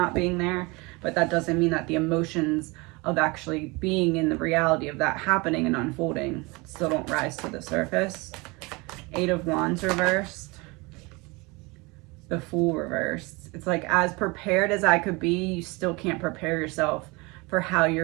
being there, but that doesn't mean that the emotions of actually being in the reality of that happening and unfolding still don't rise to the surface. 8 of Wands reversed. The Fool reversed. It's like, as prepared as I could be, you still can't prepare yourself for how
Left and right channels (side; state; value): left; quieter; 25.8 dB